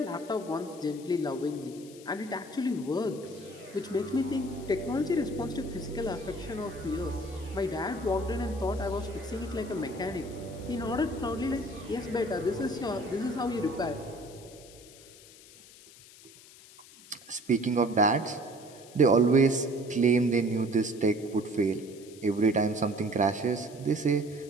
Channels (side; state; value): left; noise; hiss, 21 dB below the sound